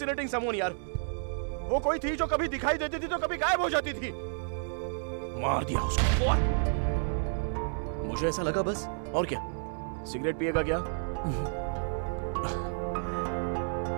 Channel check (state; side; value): silent; left; digital silence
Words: someone यार। वो कोई थी जो कभी दिखाई देती थी तो कभी गायब हो जाती थी। मार दिया उसको। What? मुझे ऐसा लगा बस, और क्या? सिगरेट पिएगा क्या?